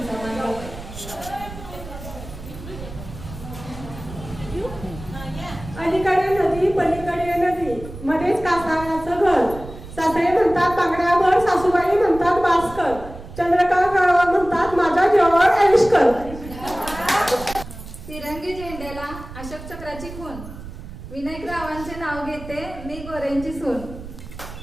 राव. अलीकडे नदी पलीकडे नदी मध्येच कासाराचं घर सासरे म्हणतात पांगड्याभर सासूबाई म्हणतात भास्कर चंद्रकांत राव म्हणतात माझ्या जीवावर ऐशकर. तिरंगी झेंड्याला अशोक चक्राची खून विनायक रावांचे नाव घेते मी गोऱ्यांची सून.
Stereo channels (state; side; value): noise; right; rumble, 13 dB below the sound